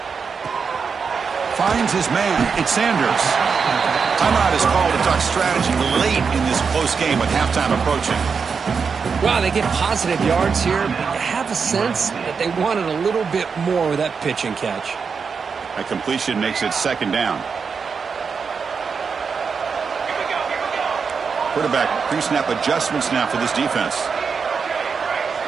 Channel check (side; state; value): left; quieter; 5.7 dB